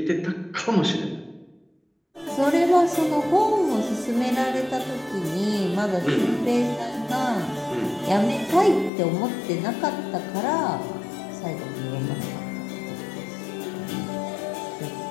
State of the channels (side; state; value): right; drops out; at 8.9 s